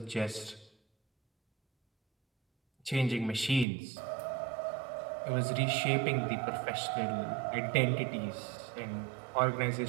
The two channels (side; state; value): left; drops out; at 3.7 s